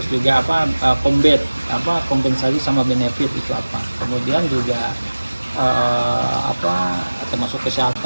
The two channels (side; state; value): both; inverted; correlation -1.00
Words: juga kompensasi sama benefit itu apa. Kemudian juga termasuk